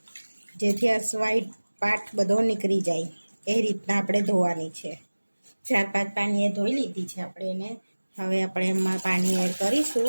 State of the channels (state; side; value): inverted; both; correlation -1.00